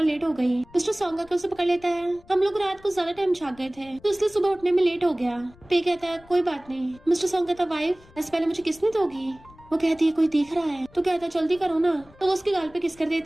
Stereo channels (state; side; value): noise; left; rumble, 25 dB below the sound